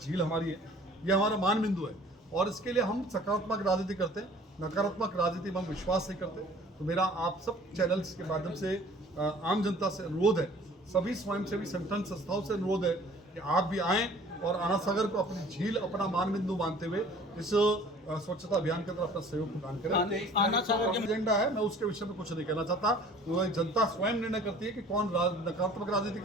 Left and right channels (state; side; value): normal; both; correlation 0.51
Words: हमारी है, ये हमारा मान बिंदु है। और इसके लिए हम सकारात्मक राजनीति करते हैं, नकारात्मक राजनीति में हम विश्वास नहीं करते। तो मेरा आप सब चैनल्स के माध्यम से आम जनता से अनुरोध है, सभी स्वयंसेवी संगठन संस्थाओं से अनुरोध है कि आप भी आएँ और आनासागर को अपनी झील, अपना मान बिंदु मानते हुए इस स्वच्छता अभियान के अंदर अपना सहयोग प्रदान करें। आनासागर का एजेंडा है, मैं उसके विषय में कुछ नहीं कहना चाहता। वो जनता स्वयं निर्णय करती है कि कौन नकारात्मक राजनीति